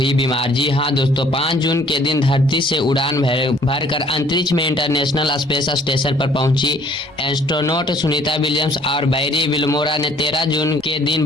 बीमार। जी हाँ दोस्तों, 5 जून के दिन धरती से उड़ान भरकर अंतरिक्ष में इंटरनेशनल स्पेस स्टेशन पर पहुंची एस्ट्रोनॉट सुनीता विलियम्स और बैरी विल्मोरा ने 13 जून के दिन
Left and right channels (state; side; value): normal; both; correlation 0.58